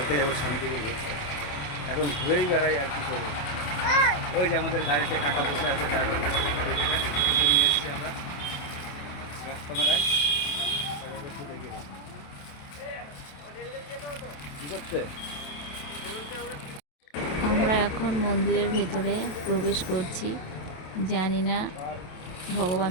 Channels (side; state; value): right; late; 28 ms